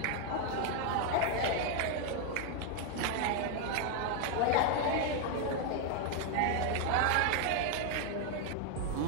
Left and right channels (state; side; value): different; both; correlation 0.01